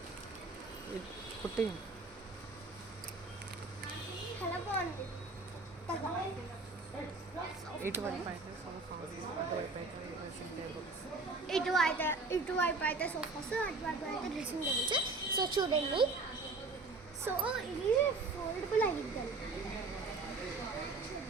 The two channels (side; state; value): left; quieter; 3.6 dB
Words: కుట్టి చాలా బాగుంది. ఇటువైపు అయితే సోఫాస్, అటువైపు అయితే డ్రెస్సింగ్ టేబుల్స్. సో చూడండి. సో ఇది ఫోల్డబుల్ అయ్యిద్దండి,